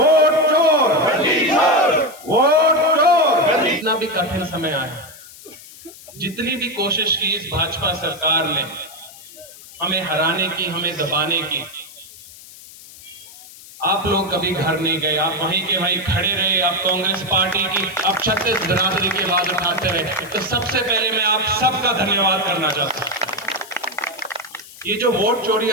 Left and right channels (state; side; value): noise; left; hiss, 19 dB below the sound